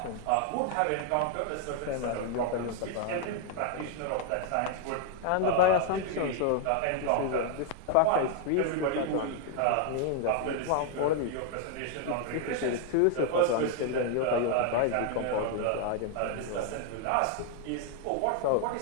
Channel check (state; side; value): different; both; correlation 0.00